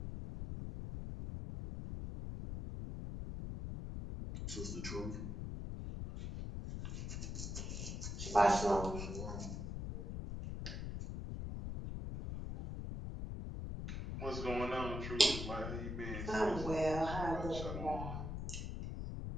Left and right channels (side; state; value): left; noise; rumble, 4 dB below the sound